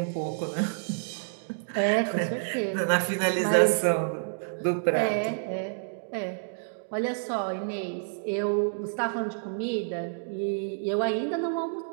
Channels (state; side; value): silent; left; digital silence